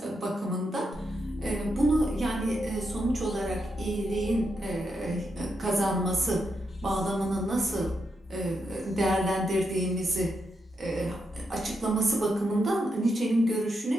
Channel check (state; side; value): normal; both; correlation 0.83